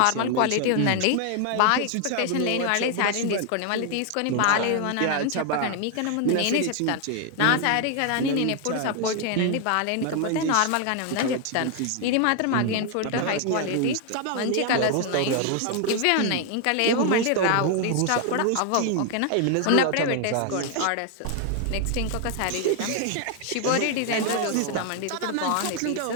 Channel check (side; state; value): both; different; correlation 0.00